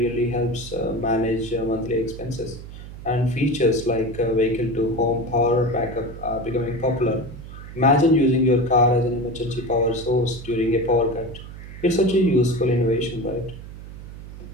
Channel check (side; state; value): right; noise; hum, 13 dB below the sound